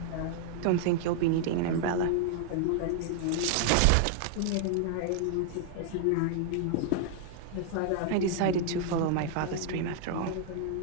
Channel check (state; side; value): different; both; correlation 0.00